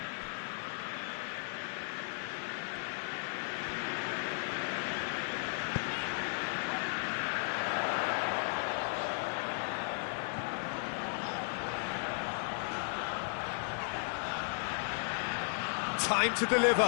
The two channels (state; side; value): silent; right; 54 dB below the other